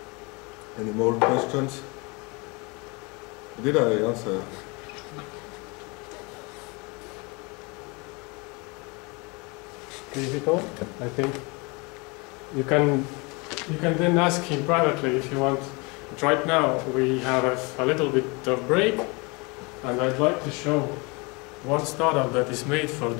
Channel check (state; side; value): quieter; right; 28.5 dB